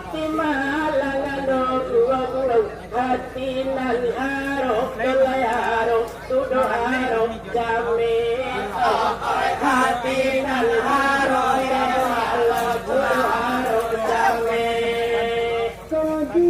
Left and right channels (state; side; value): identical; both; correlation 1.00